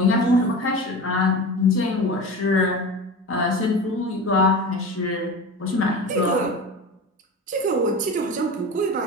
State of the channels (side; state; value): both; normal; correlation 0.30